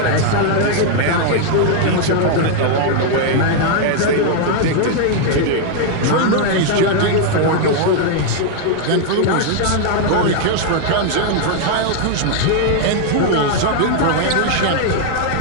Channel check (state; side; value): different; both; correlation 0.00